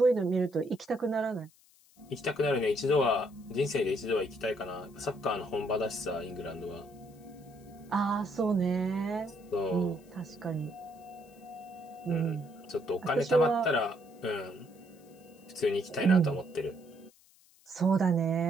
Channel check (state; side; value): noise; left; hiss, 29 dB below the sound